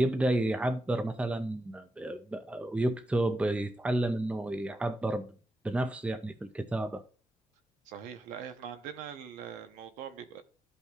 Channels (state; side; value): normal; both; correlation 0.88